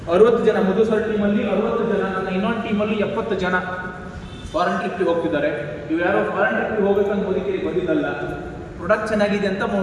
60 ಜನ ಮಧು ಸರ್ ಟೀಮಲ್ಲಿ 60 ಜನ, ನನ್ನ ಇನ್ನೊಂದು ಟೀಮಲ್ಲಿ 70 ಜನ ಫಾರಿನ್ ಟ್ರಿಪ್ಗೆ ಹೋಗ್ತಿದ್ದಾರೆ. ಇವು ಯಾರೋ ಫಾರಿನ್ ಟ್ರಿಪ್ಗೆ ಹೋಗ್ಬೇಕಂತ ಮೋದಿ ಕೇರಿಗೆ ಬಂದಿದ್ದಲ್ಲ, ಪ್ರೊಡಕ್ಟ್ ಚೆನ್ನಾಗಿದೆ ಅಂತ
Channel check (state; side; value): identical; both; correlation 1.00